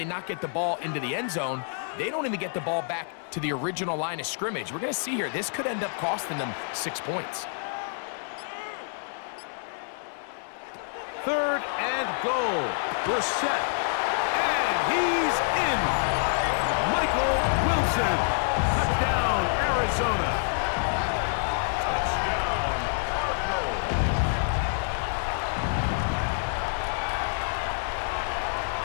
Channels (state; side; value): silent; right; 60 dB below the other